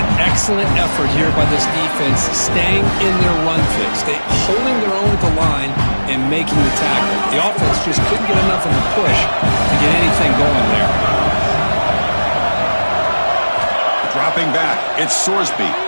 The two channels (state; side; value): inverted; both; correlation -1.00